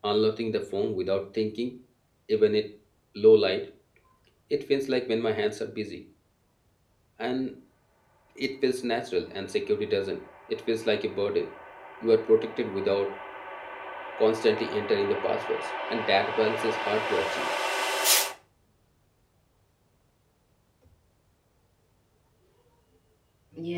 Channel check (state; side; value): identical; both; correlation 1.00